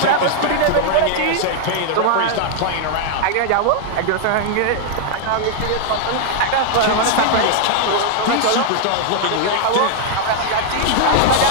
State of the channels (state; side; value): different; both; correlation 0.00